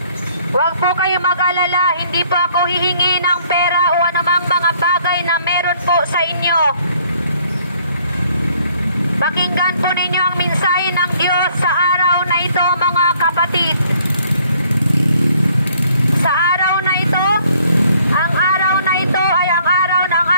Huwag po kayo mag-alala, hindi po ako hihingi ng pera o anumang mga bagay na meron po sa inyo. Pakinggan po ninyo ang mensahe ng Diyos sa araw na ito, mga kapatid. Sa araw na ito, ang araw na ito ay ang araw ng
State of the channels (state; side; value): inverted; both; correlation -0.62